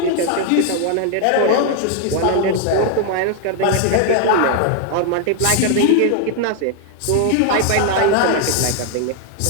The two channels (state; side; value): different; both; correlation 0.00